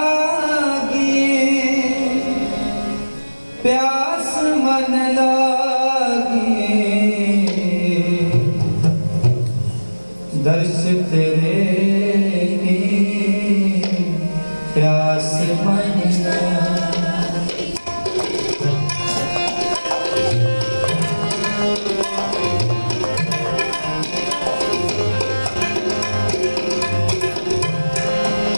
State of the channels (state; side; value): inverted; both; correlation -1.00